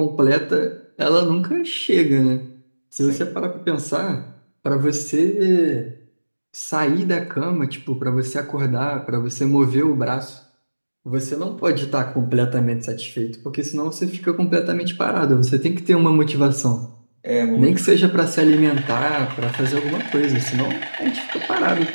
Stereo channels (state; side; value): inverted; both; correlation -1.00